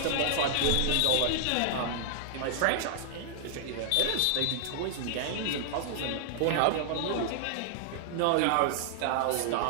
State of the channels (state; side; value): different; both; correlation -0.01